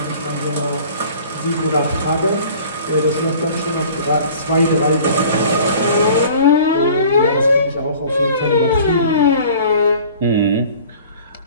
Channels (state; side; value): inverted; both; correlation -0.47